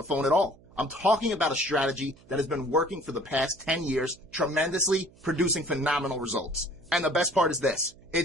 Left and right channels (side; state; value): right; noise; hum, 26 dB below the sound